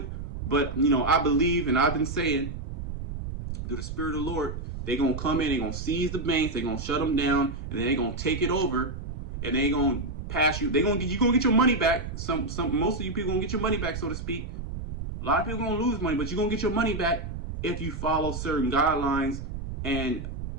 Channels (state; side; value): noise; right; rumble, 7 dB below the sound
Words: But I believe, and I've been saying, through the Spirit of the Lord, they're gonna come in, they're gonna seize the banks, they're gonna shut them down, and then they're gonna take it over, and they're gonna pass you. You're gonna get your money back. Most of you people gonna get your money back, so to speak. A lot of people gonna lose money, but you're gonna get your money back if you follow certain guidelines and